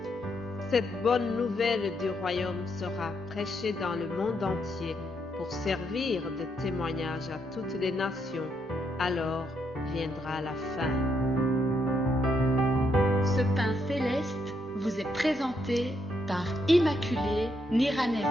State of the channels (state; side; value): normal; both; correlation 0.77